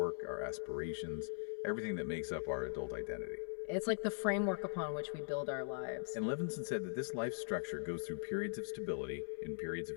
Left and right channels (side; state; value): right; silent; 50 dB below the other